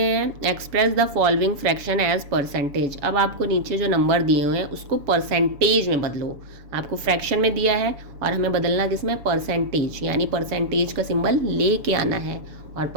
express the following fraction as percentage. अब आपको नीचे जो नंबर दिए हुए हैं उसको परसेंटेज में बदलो। आपको फ्रैक्शन में दिया है और हमें बदलना किसमें, परसेंटेज, यानी परसेंटेज का सिंबल लेके आना है। और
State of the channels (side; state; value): left; late; 7.1 ms